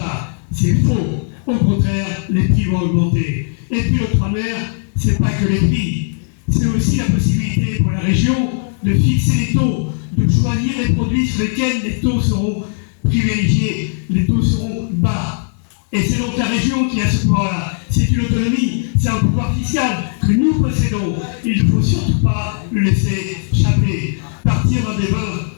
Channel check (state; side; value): silent; right; digital silence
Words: C'est faux. Au contraire, les prix vont augmenter. Et puis le 3 mer, c'est pas que les prix, c'est aussi la possibilité pour la région de fixer les taux, de choisir les produits sur lesquels les taux seront privilégiés, les taux seront bas. Et c'est donc la région qui a ce pouvoir-là. C'est une autonomie, c'est un pouvoir fiscal que nous possédons. Il ne faut surtout pas le laisser échapper, partir dans des vins,